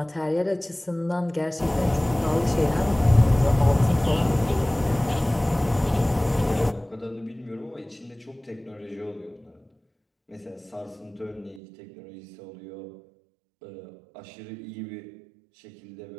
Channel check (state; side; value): drops out; left; at 11.6 s